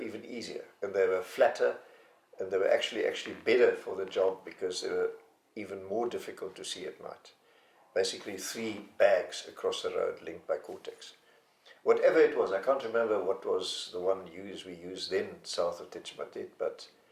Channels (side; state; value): both; identical; correlation 1.00